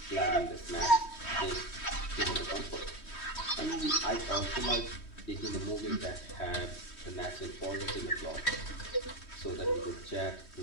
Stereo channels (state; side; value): late; right; 3.1 ms